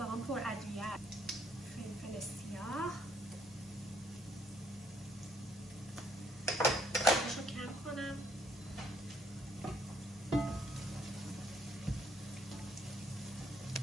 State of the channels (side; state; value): both; normal; correlation 0.68